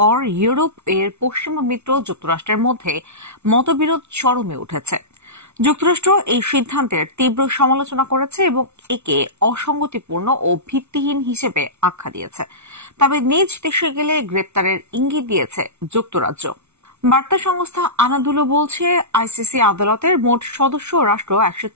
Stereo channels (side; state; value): left; late; 0.81 ms